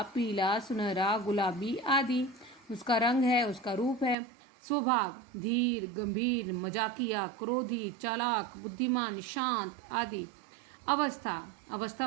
पीला, सुनहरा, गुलाबी आदि उसका रंग है, उसका रूप है। स्वभाव, धीर, गंभीर, मजाकिया, क्रोधी, चालाक, बुद्धिमान, शांत आदि। अवस्था, अवस्था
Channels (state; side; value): drops out; left; at 4.2 s